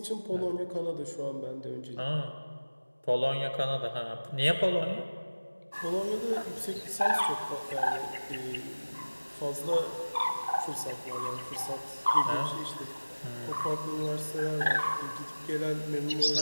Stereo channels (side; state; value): both; inverted; correlation -1.00